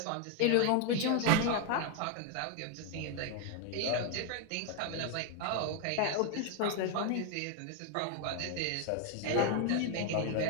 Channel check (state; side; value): different; both; correlation 0.01